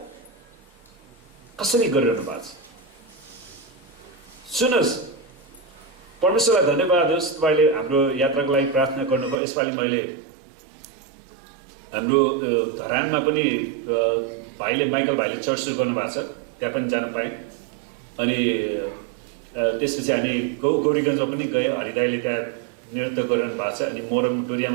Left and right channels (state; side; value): drops out; left; at 9.3 s